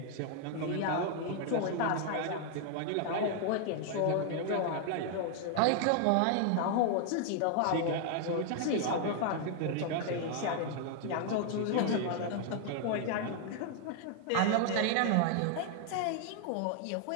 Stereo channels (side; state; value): both; different; correlation 0.00